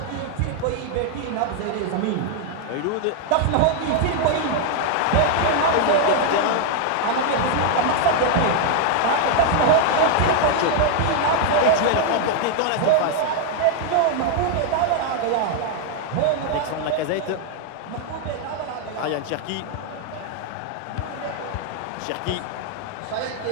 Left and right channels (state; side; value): different; both; correlation 0.00